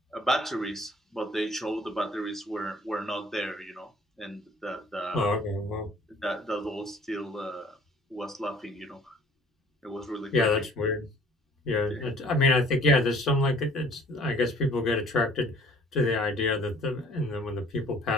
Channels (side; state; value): both; normal; correlation 0.54